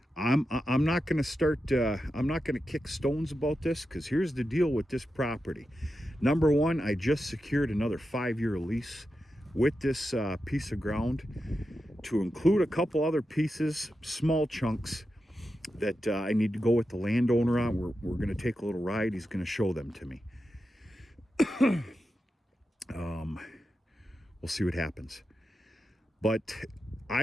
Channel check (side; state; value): both; normal; correlation 0.89